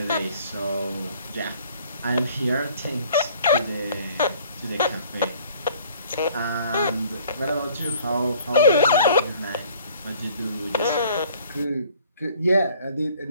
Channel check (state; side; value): inverted; both; correlation -0.57